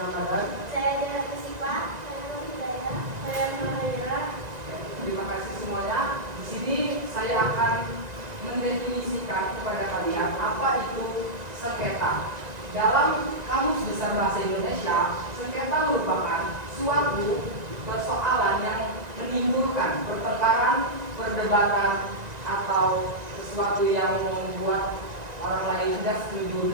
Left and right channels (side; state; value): left; late; 1.9 ms